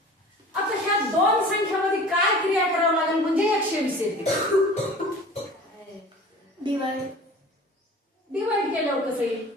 आता ह्या दोन संख्यामध्ये काय क्रिया करावं लागेल म्हणजे 120 येते. डिवाइड केल्यावर कसं येईल?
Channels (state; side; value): normal; both; correlation 0.42